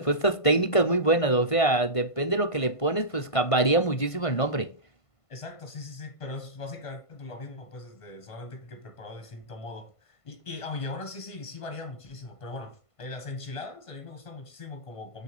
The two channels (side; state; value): right; late; 1.5 ms